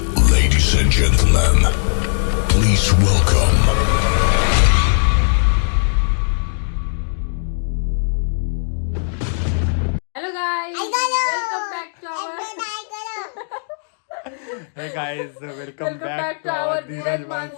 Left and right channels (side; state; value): right; silent; digital silence